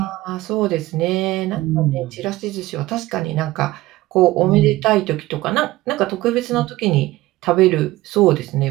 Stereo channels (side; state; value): left; quieter; 17.5 dB